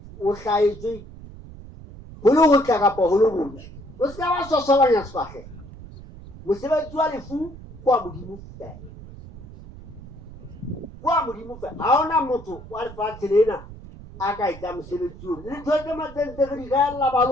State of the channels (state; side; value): noise; right; rumble, 16 dB below the sound